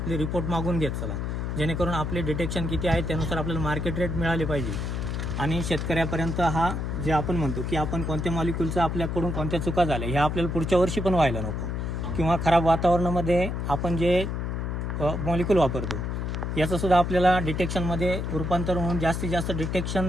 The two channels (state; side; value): noise; left; hum, 2 dB below the sound